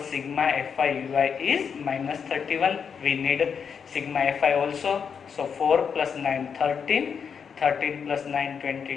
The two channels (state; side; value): quieter; right; 6.7 dB